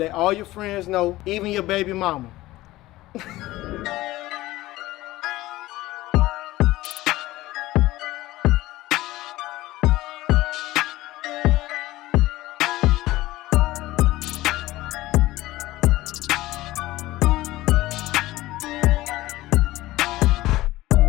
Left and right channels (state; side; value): quieter; right; 17.3 dB